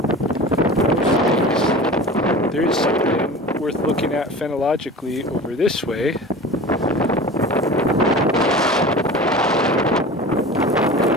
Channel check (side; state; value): both; normal; correlation 0.36